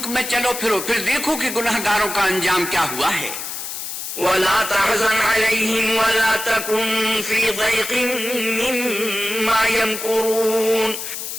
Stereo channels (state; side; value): noise; left; hiss, 7 dB below the sound